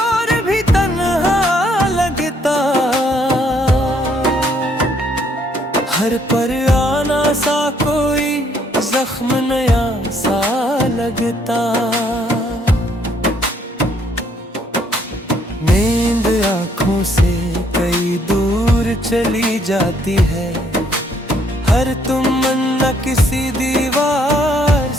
भी तन्हा लगता, हर पर आना सा कोई जख्म नया सा लगता। नींद आँखों से कई दूर चली जाती है, हर तमन्ना किसी दीवार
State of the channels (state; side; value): normal; both; correlation 0.67